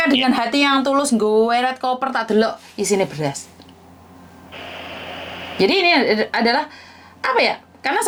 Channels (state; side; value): identical; both; correlation 1.00